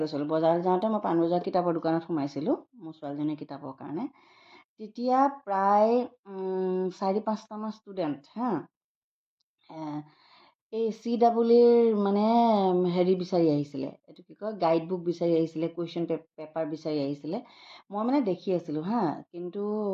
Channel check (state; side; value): identical; both; correlation 1.00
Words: গৈছিলোঁ। বজাৰলৈ যাওঁতে মই পাণবজাৰ কিতাপৰ দোকানত সোমাইছিলোঁ মোৰ ছোৱালীজনীৰ কিতাপৰ কাৰণে। তেতিয়া প্ৰায় 4-5টামান ষ্টুডেণ্ট এই CEEৰ মানে হেৰি বিচাৰি আহিছিলে, এইটো কি কয়, গাইড বুক বিচাৰি আহিছিলে, কুৱেশ্যন পেপাৰ বিচাৰি আহিছিলে। মই মানে দেখি আছিলোঁ কিন্তু